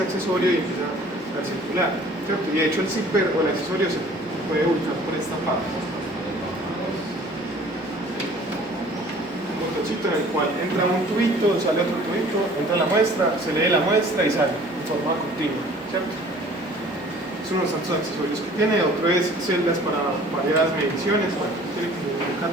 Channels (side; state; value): both; normal; correlation 0.51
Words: accesorio y empieza a circular, ¿cierto? Y de hecho el zipper o el accesorio se puede ubicar por esta parte. En el cual entra un tubito, sale otro tubito, entra la muestra, se lee la muestra y sale de forma continua, ¿cierto? Es uno de los tantos accesorios que tiene. Otro es celdas para varias mediciones, bueno, tiene un